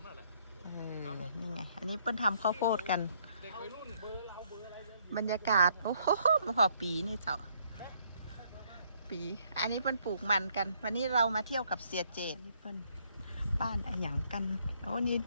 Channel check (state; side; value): inverted; both; correlation -0.68